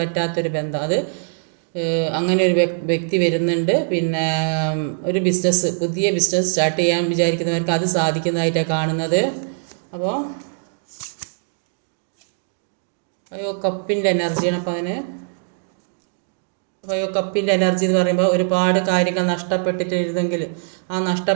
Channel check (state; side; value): silent; left; digital silence